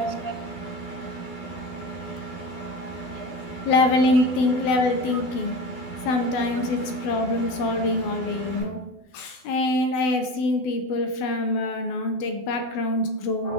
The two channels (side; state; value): right; late; 12 ms